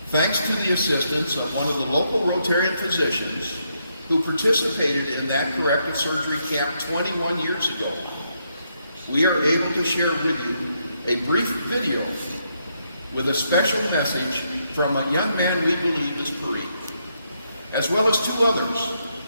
thanks to the assistance of one of the local Rotarian physicians who participated in that corrective surgery camp 21 years ago, we are able to share with you a brief video with a special message from a young man we believe is Parik, as well as two others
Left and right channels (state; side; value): inverted; both; correlation -0.78